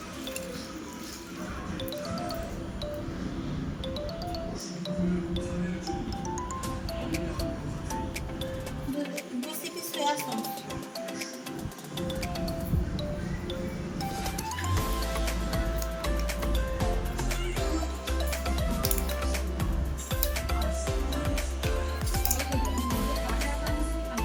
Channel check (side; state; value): both; identical; correlation 1.00